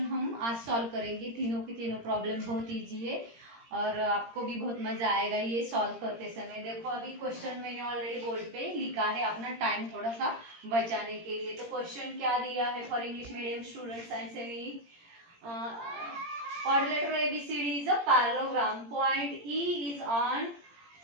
हम आज सॉल्व करेंगे. तीनों की तीनों प्रॉब्लम बहुत ईजी है और आपको भी बहुत मजा आएगा ये सॉल्व करते समय. देखो अभी क्वेश्चन मैंने ऑलरेडी बोर्ड पे लिखा है अपना टाइम थोड़ा सा बचाने के लिए. तो क्वेश्चन क्या दिया है for English medium students and semi quadrilateral ABCD is a parallelogram. Point E is on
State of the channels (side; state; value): left; late; 17 ms